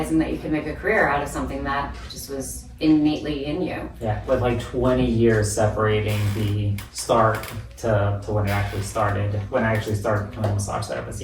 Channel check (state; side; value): identical; both; correlation 1.00